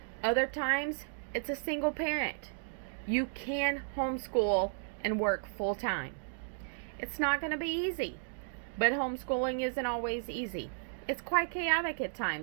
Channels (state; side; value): silent; left; digital silence